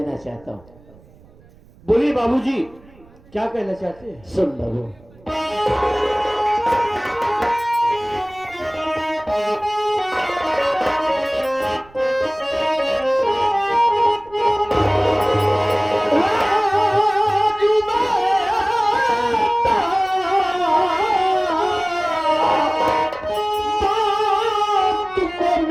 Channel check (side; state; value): right; noise; rumble, 26 dB below the sound